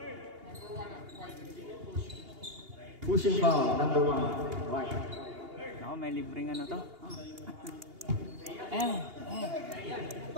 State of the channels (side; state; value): left; late; 2.8 ms